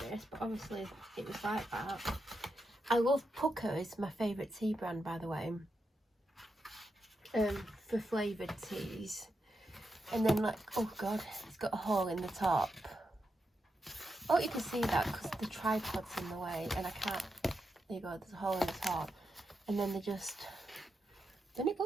this, but obviously it was like that. I love Pucker. It's my favourite tea brand, by the way, for flavoured teas. And then, like, oh god, it's got a hole in the top. Oh, you can see that because the tripod's in the way, and I can't. There you go, there's a hole in the top. And then they just, doesn't it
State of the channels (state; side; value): normal; both; correlation 0.86